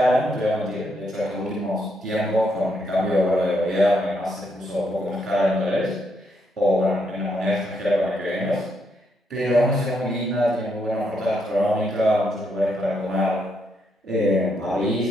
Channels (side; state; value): both; normal; correlation 0.77